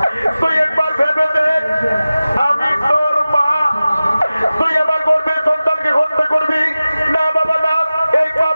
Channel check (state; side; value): inverted; both; correlation -0.96